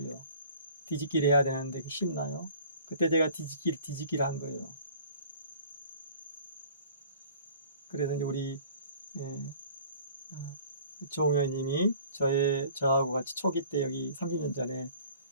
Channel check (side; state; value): both; inverted; correlation -0.49